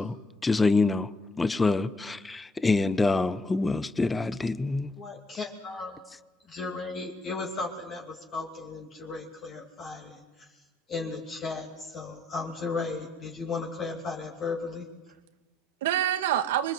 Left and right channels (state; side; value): normal; both; correlation 0.68